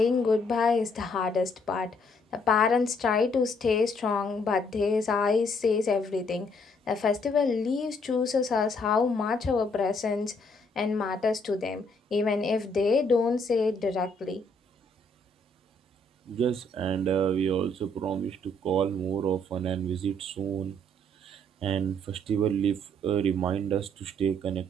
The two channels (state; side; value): normal; both; correlation 0.68